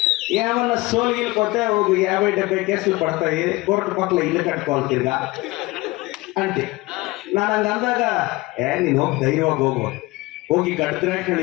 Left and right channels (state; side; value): quieter; right; 21.4 dB